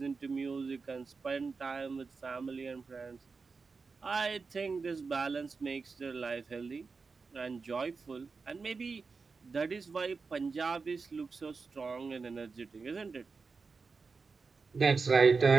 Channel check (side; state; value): left; quieter; 4.6 dB